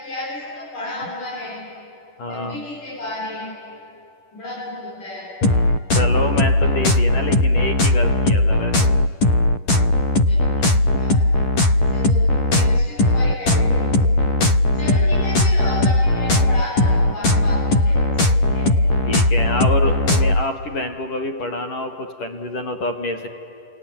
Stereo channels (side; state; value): right; late; 10 ms